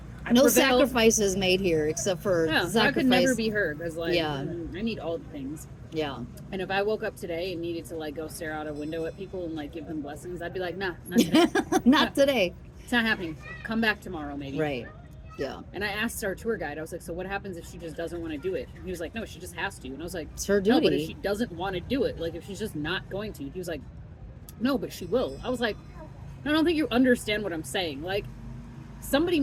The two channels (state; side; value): identical; both; correlation 1.00